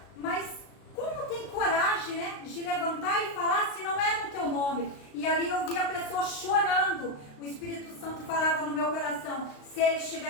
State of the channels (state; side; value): late; right; 35 ms